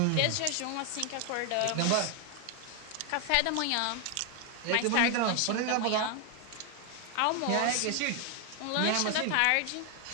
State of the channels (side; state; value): both; different; correlation 0.00